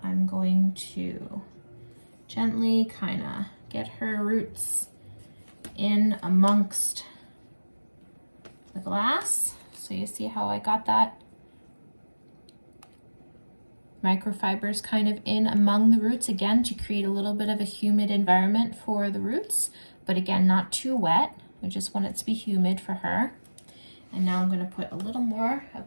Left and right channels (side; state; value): both; inverted; correlation -1.00